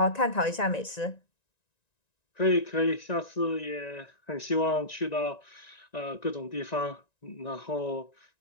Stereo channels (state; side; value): late; right; 1.9 ms